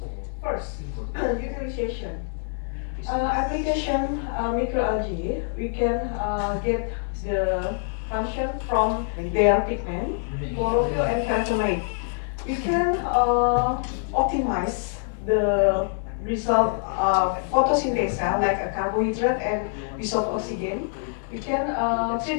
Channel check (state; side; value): silent; right; digital silence